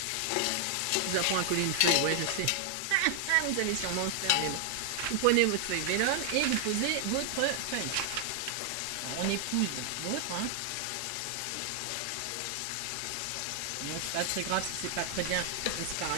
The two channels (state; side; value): different; both; correlation 0.00